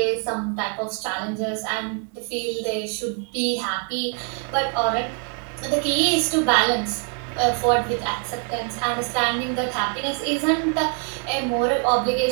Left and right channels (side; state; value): left; quieter; 37.9 dB